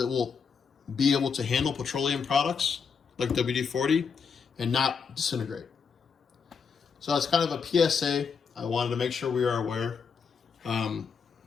will be able to handle petroleum products like WD-40 and not disintegrate. So that's kind of a PSA. I wanted to make sure we are aware.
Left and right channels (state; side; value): quieter; right; 5.9 dB